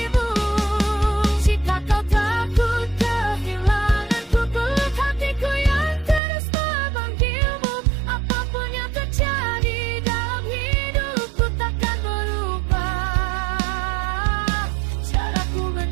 Jika kau takut kehilanganku, peluk hatiku yang terus memanggilmu. Apapun yang terjadi dalam hidupku takkan berubah caraku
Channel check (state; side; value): drops out; left; at 6.2 s